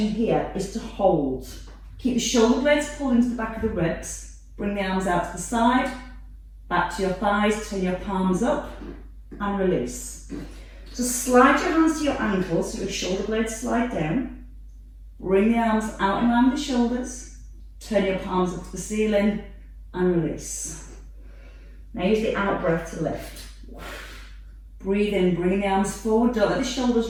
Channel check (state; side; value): identical; both; correlation 1.00